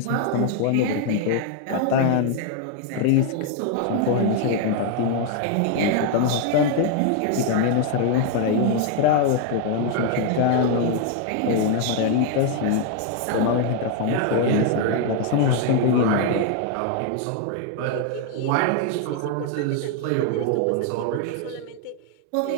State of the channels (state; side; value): different; both; correlation 0.00